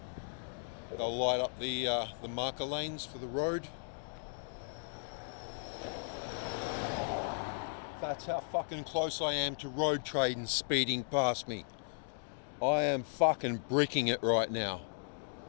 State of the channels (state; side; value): silent; right; digital silence